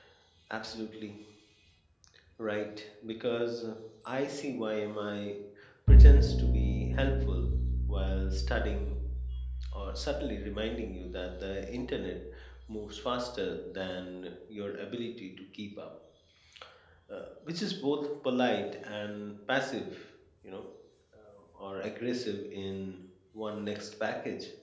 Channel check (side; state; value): both; identical; correlation 1.00